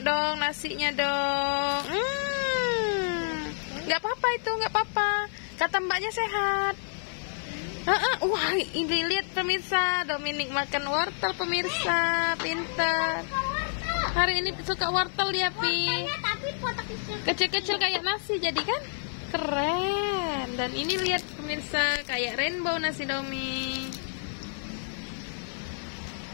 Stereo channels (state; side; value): silent; right; 55 dB below the other